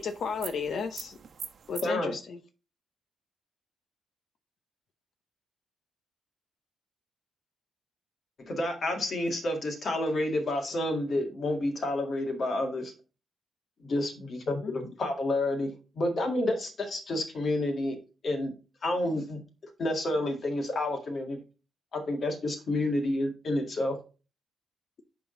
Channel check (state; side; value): normal; both; correlation 0.83